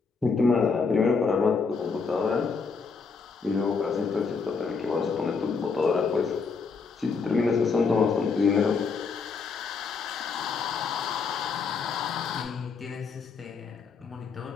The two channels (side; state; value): right; quieter; 5.1 dB